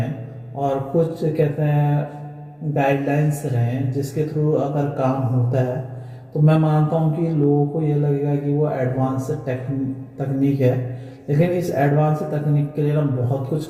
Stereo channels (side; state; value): both; identical; correlation 1.00